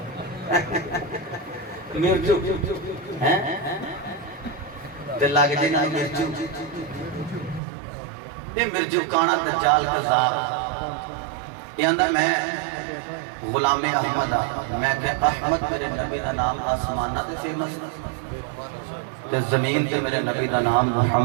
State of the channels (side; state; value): left; drops out; at 7.6 s